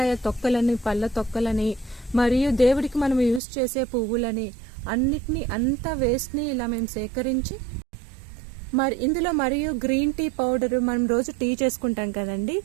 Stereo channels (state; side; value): drops out; left; at 3.4 s